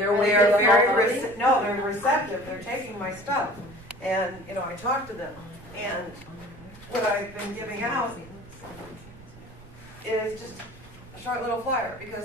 waking up? No, they're receptive. They're taking my stuff, and you know, I talk to them, and what I've been giving out is just a short little flyer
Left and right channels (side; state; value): right; noise; rumble, 20 dB below the sound